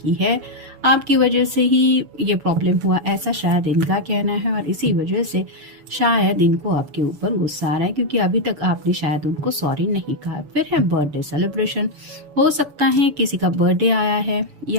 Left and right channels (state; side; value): late; left; 6.9 ms